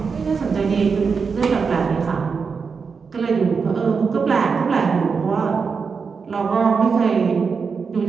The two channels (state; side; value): quieter; left; 5.4 dB